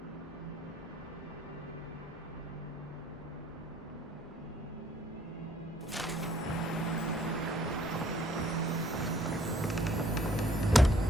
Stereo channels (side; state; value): both; normal; correlation 0.61